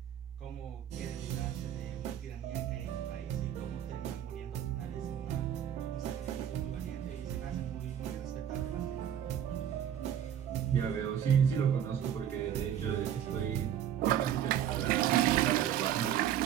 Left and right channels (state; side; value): quieter; left; 9.9 dB